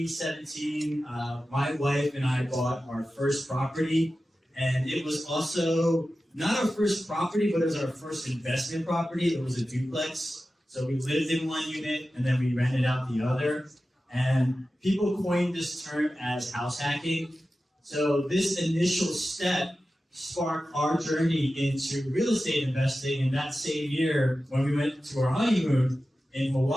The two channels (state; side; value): normal; both; correlation 0.94